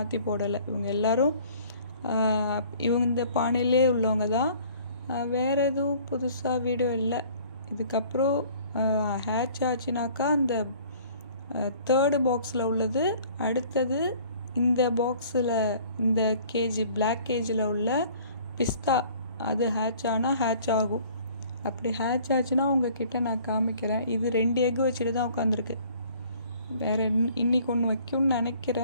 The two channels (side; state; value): both; inverted; correlation -0.53